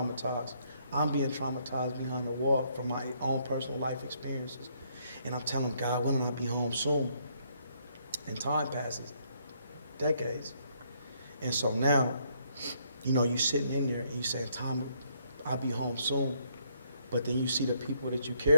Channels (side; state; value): both; inverted; correlation -0.70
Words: I'm being traumatized behind the wall from my own personal life experiences. And I'm telling God, when will I be home soon? And time passes, decades. And so now, you sitting in there and you saying, Tom, I'll be home soon. But then you see the people that you